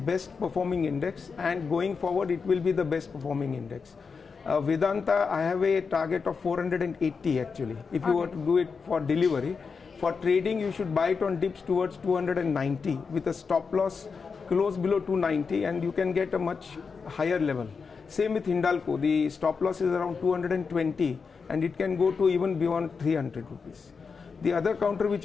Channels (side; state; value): right; quieter; 5.3 dB